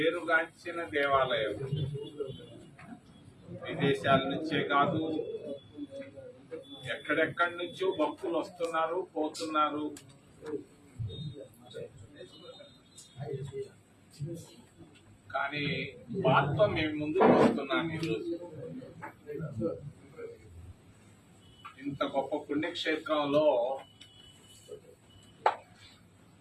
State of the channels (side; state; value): both; identical; correlation 1.00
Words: దేవాలయం. విదేశాల నుంచే కాదు, ఎక్కడెక్కడి నుంచో భక్తులు వస్తున్నారు, పోతున్నారు. కానీ బాధతో మేము ముందుకు వస్తున్నాను. ఈరోజు ఇంత గొప్ప పుణ్యక్షేత్రంలో